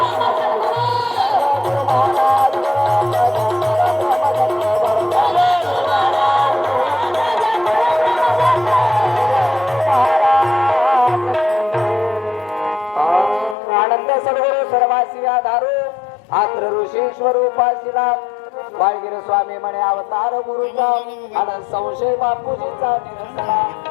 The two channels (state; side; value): drops out; right; at 13.6 s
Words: आनंद सद्गुरु सर्वासी आधारू आत्र ऋषी स्वरूपाशिला बाळगिरी स्वामी म्हणे अवतार गुरुचा आणि संशय बापूजीचा निरंतरा